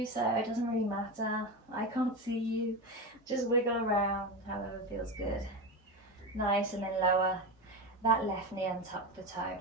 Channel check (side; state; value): both; normal; correlation 0.20